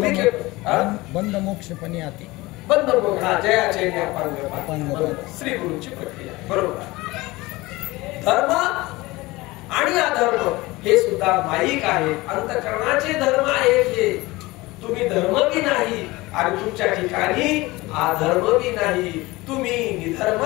मोक्ष पण याते. बंद मोक्ष जयाचे श्री गुरुची प्रक्रिया. बरोबर. धर्म आणि अधर्म हे सुद्धा माईक आहे, अंतःकरणाचे धर्म आहेत. हे तुम्ही धर्म बी नाही आणि तुमच्या ठिकाणी अधर्म बी नाही. तुम्ही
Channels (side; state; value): right; quieter; 20.9 dB